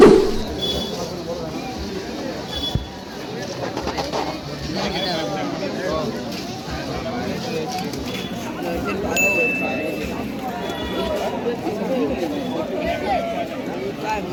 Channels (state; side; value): identical; both; correlation 1.00